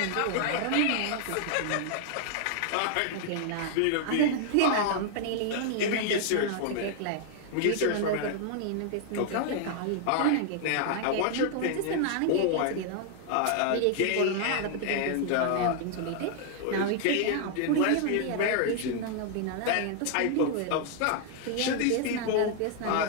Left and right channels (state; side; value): different; both; correlation 0.00